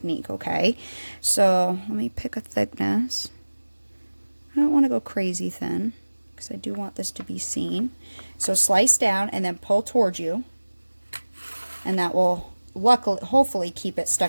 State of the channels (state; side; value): inverted; both; correlation -1.00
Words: okay? So let me pick a thickness. I don't want to go crazy thin, because I do want this to be seen. So slice down and then pull towards you, and that will hopefully keep it